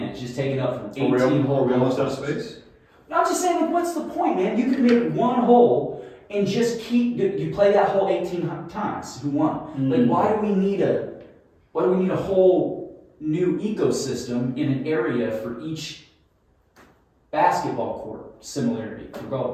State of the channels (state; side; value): identical; both; correlation 1.00